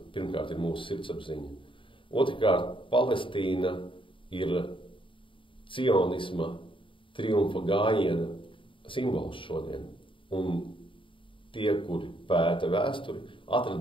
pirmkārt ir mūsu sirdsapziņa. Otrkārt, Palestīna ir cionisma triumfa gājiena simbols šodien. Un tie, kuri pēta vēsturi,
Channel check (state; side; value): late; right; 0.25 ms